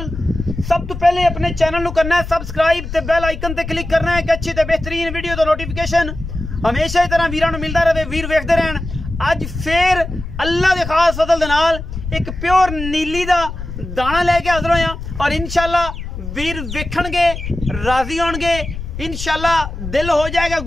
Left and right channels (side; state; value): left; noise; rumble, 8 dB below the sound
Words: सब तो पहले अपने चैनल को करना है सबसक्राइब ते बेल आइकन ते क्लिक करना है कि अच्छी ते बेहतरीन वीडियो तो नोटिफिकेशन हमेशा ही तरह वीरां नूं मिलदा रहे, वीर वेखदे रहन। अज फिर अल्लाह दे खास फजल दे नाल एक प्योर नीली दा दाना लेके हाज़र होया और इंशाल्लाह वीर वेखणगे, राजी होणगे, इंशाल्लाह दिल हो जाएगा